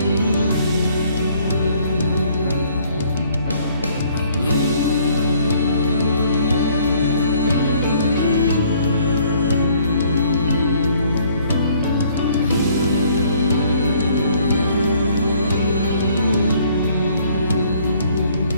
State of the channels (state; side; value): inverted; both; correlation -0.61